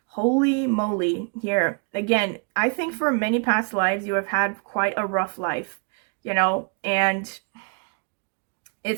Holy moly, here. Again, I think for many past lives, you have had quite a rough life, you know, and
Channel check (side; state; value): left; quieter; 36.0 dB